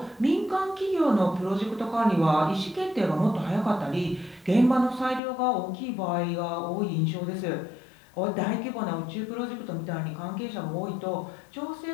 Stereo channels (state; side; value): drops out; right; at 5.2 s